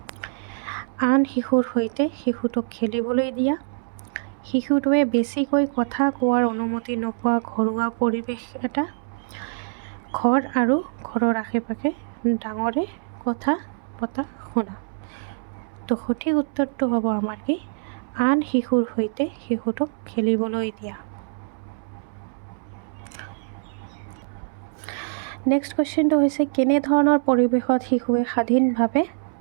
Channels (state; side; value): silent; left; 62 dB below the other